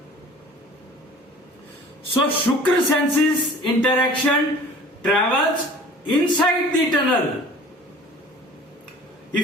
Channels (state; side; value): normal; both; correlation 0.46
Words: So Shukra senses interaction travels inside the tunnel.